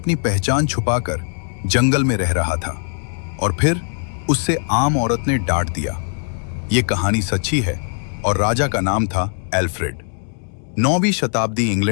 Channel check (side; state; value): right; silent; 66 dB below the other